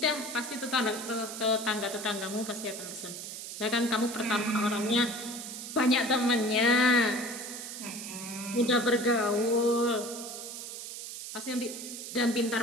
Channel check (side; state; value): right; noise; hiss, 9 dB below the sound